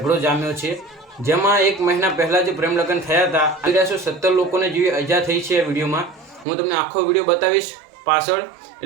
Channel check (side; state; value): left; drops out; at 6.5 s